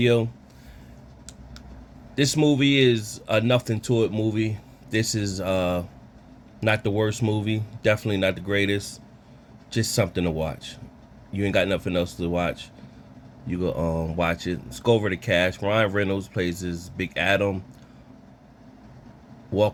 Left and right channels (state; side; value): identical; both; correlation 1.00